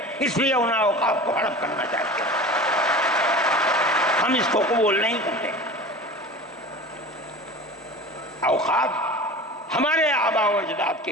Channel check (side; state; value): both; normal; correlation 0.35